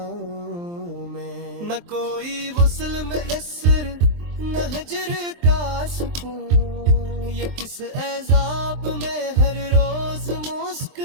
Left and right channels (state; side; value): late; left; 23 ms